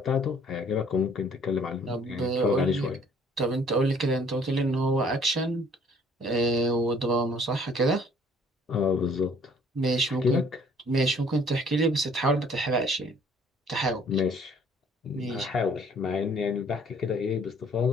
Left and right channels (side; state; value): both; normal; correlation 0.58